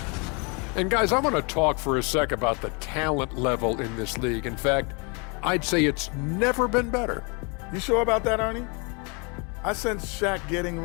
And guys, I want to talk for a sec about the talent level in this league. In fact, I'd say it's never been better. You sure about that, Ernie? I sense Shaq getting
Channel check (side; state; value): right; quieter; 32.5 dB